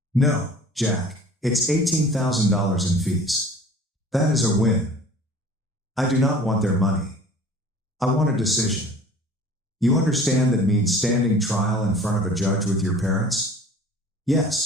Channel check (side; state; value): both; normal; correlation 0.46